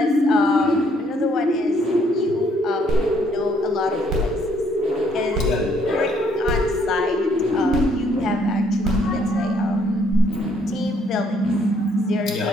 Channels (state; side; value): normal; both; correlation 0.67